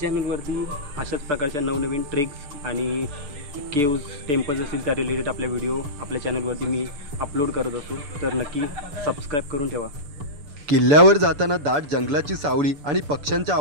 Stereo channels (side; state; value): left; late; 6.9 ms